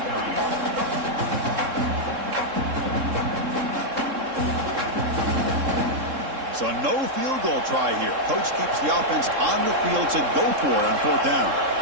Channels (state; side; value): late; left; 3.7 ms